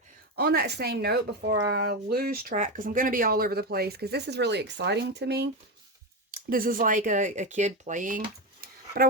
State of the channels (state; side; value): normal; both; correlation 0.14